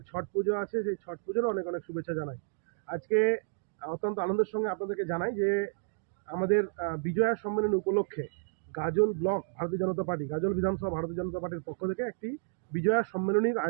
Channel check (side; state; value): left; silent; digital silence